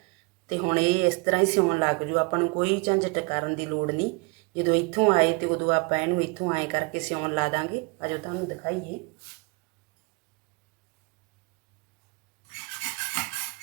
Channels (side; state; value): left; quieter; 30.6 dB